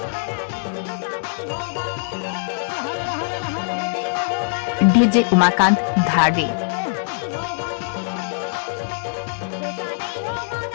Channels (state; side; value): silent; right; 64 dB below the other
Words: डीजे उमाकांत धारवे।